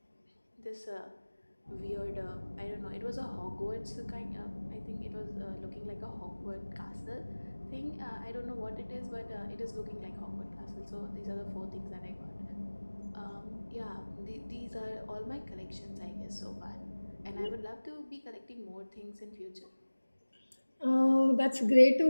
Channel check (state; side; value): inverted; both; correlation -1.00